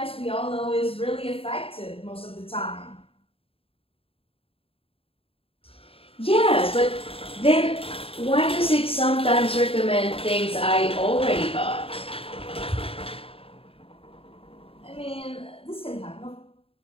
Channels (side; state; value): right; late; 0.27 ms